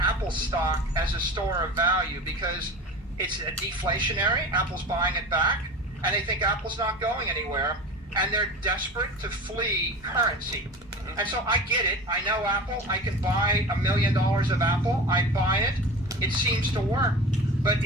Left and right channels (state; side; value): normal; both; correlation 0.33